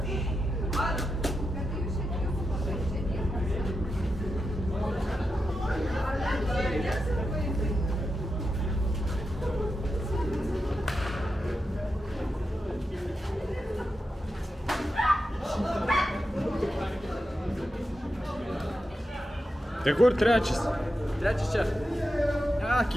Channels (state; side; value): normal; both; correlation 0.89